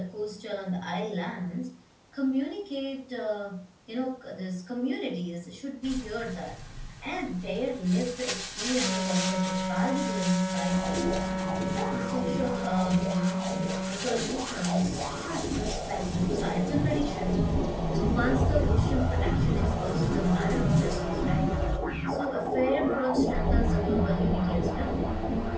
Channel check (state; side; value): identical; both; correlation 1.00